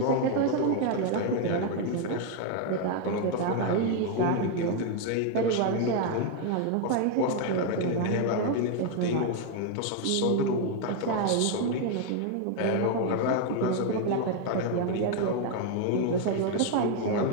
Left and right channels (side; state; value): both; different; correlation 0.01